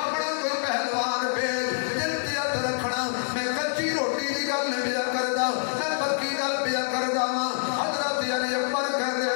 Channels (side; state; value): right; silent; digital silence